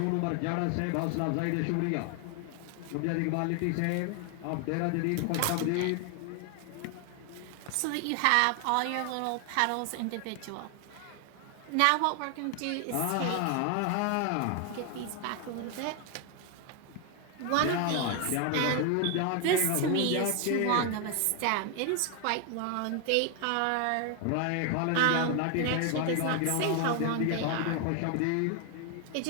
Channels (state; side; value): different; both; correlation 0.01